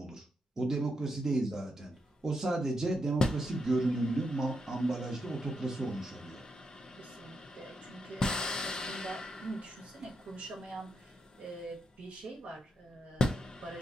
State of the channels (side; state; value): both; normal; correlation 0.82